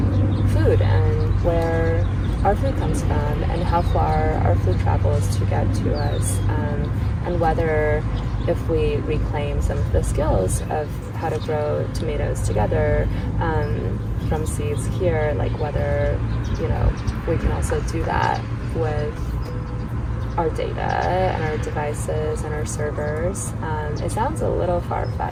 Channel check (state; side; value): identical; both; correlation 1.00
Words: food and where our food comes from and how far our food travels to get to us, and whether if we reclaim some of the skills of how to grow tomatoes together from seeds here, like whether we can also do that with our data and our devices and our servers. It sounds a little